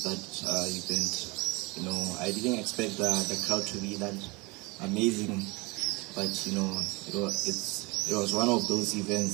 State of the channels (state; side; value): quieter; left; 25.6 dB